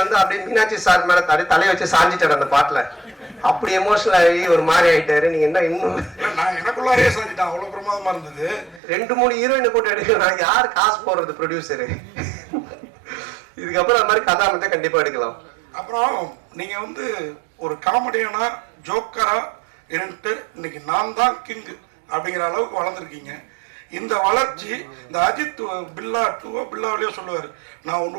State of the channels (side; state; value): left; drops out; at 8.8 s